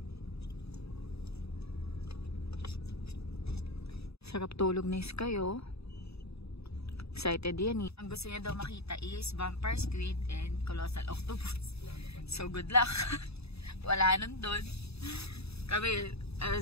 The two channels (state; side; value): late; right; 0.79 ms